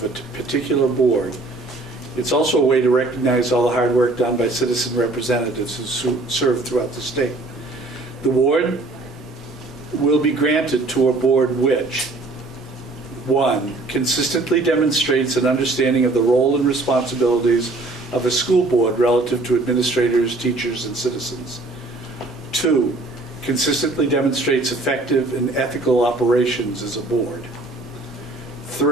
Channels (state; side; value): quieter; left; 3.1 dB